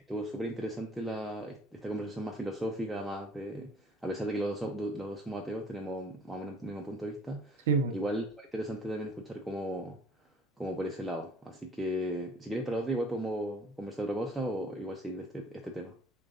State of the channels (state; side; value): normal; both; correlation 0.52